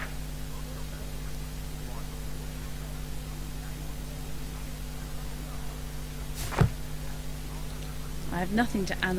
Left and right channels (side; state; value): both; identical; correlation 1.00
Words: I have nothing to